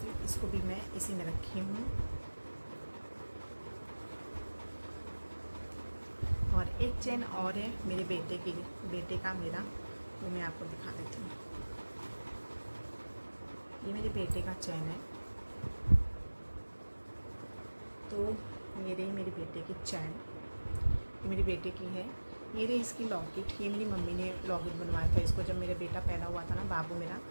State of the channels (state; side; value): inverted; both; correlation -1.00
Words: इसको भी मैं इसी में रखी हूँ। और एक चैन और है मेरे बेटे का मेरा, वो मैं आपको दिखा देती हूँ। ये मेरे बेटे का चैन है। तो ये रही मेरे बेटे की चैन, ये मेरे बेटे की है। ये रही इसकी लॉकेट, ये मेरी मम्मी ने लॉकेट बनवाया था इसको, जब मेरा बेटा पैदा हुआ था ना, बाबू मेरा,